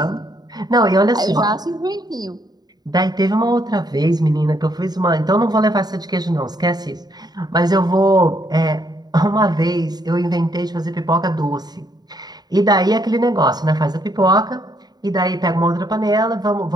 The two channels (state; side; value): late; left; 0.20 ms